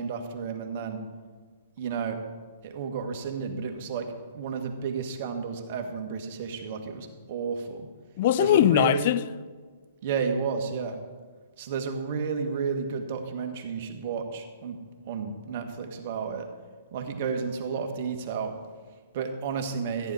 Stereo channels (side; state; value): both; inverted; correlation -0.44